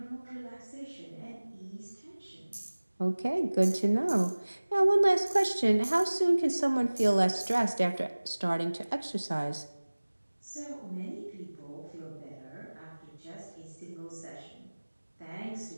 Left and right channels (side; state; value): both; inverted; correlation -1.00